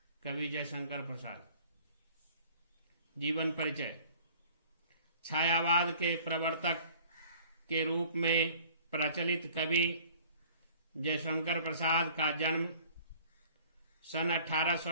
कवि जयशंकर प्रसाद। जीवन परिचय। छायावाद के प्रवर्तक के रूप में प्रचलित कवि जयशंकर प्रसाद का जन्म सन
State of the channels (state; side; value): inverted; both; correlation -0.51